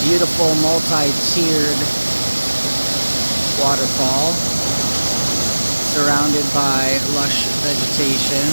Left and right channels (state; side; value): inverted; both; correlation -1.00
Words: beautiful multi-tiered waterfall surrounded by lush vegetation.